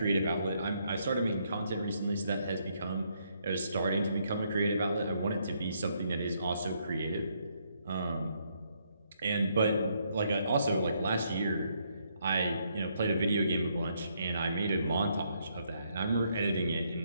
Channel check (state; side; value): inverted; both; correlation -0.73